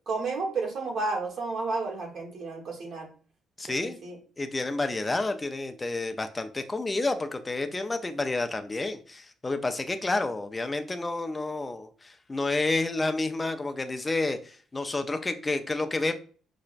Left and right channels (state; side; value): normal; both; correlation 0.90